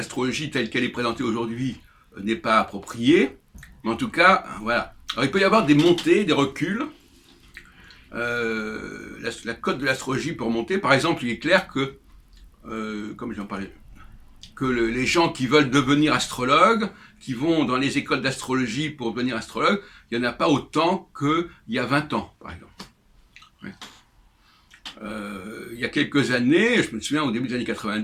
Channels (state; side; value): identical; both; correlation 1.00